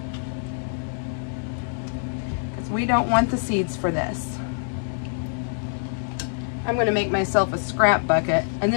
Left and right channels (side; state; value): right; silent; digital silence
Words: because we don't want the seeds for this. I'm going to make myself a scrap bucket, and